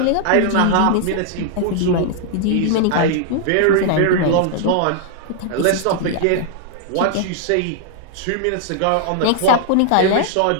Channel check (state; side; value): different; both; correlation -0.01